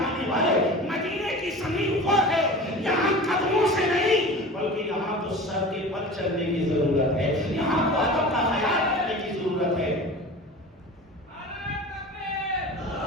والے، مدینے کی زمین وہ ہے یہاں قدموں سے نہیں بلکہ یہاں تو سر کے بل چلنے کی ضرورت ہے، یہاں تو ادب کا خیال کرنے کی ضرورت ہے۔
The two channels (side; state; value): both; normal; correlation 0.36